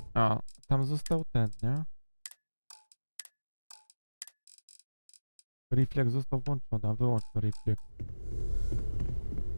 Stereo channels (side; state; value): both; inverted; correlation -1.00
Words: A, tam został ten, nie? Refleks został włączony, a wyłącz to refleks.